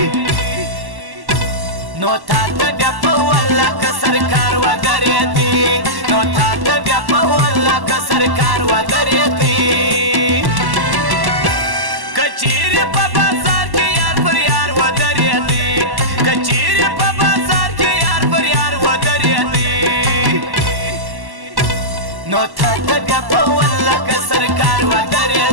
نو تا ته بیا په والله که سرکار ودرېدی نو تا ته بیا په والله که سرکار ودرېدی कचेरी په بازار کې یار پر یار ودرېدی कचेरी په بازار کې یار پر یار ودرېدی نو تا ته بیا په والله که سرکار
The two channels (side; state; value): left; late; 1.1 ms